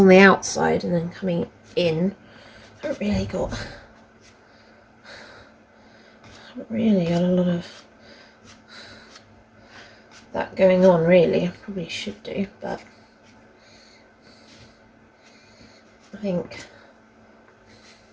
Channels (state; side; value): identical; both; correlation 1.00